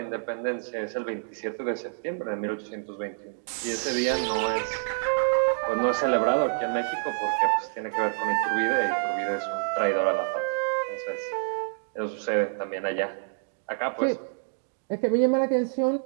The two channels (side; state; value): left; silent; digital silence